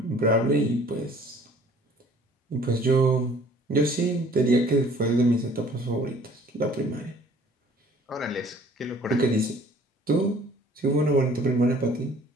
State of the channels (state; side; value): normal; both; correlation 0.54